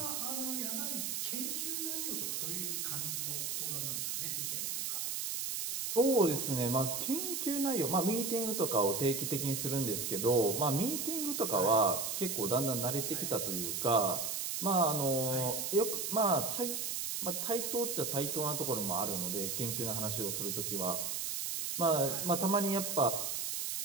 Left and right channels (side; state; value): right; noise; hiss, 2 dB below the sound